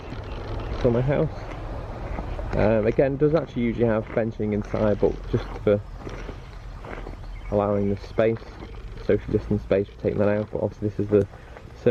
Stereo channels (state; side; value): identical; both; correlation 1.00